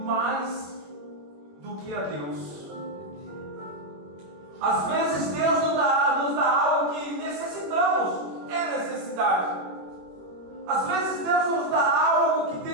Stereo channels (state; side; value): late; left; 21 ms